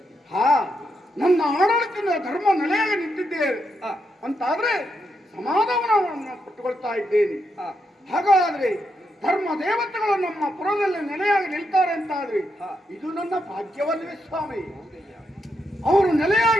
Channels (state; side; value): normal; both; correlation 0.82